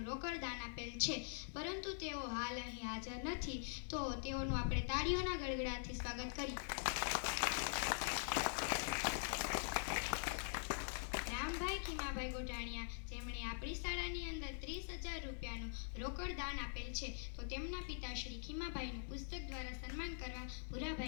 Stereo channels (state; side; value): silent; right; digital silence